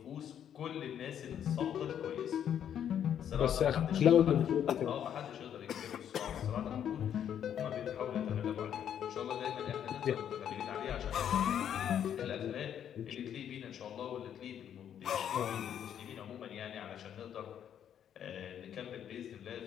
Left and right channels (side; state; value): right; quieter; 9.4 dB